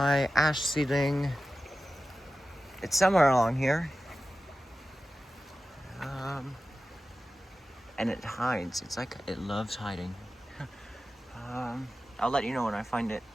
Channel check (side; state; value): both; normal; correlation 0.94